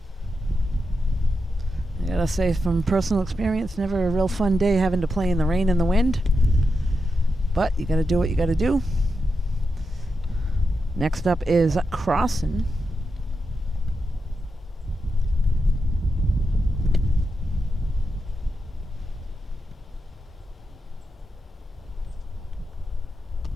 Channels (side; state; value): both; normal; correlation 0.87